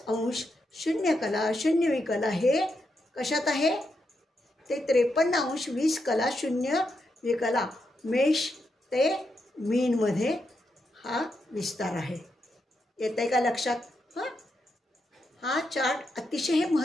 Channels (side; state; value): both; normal; correlation 0.83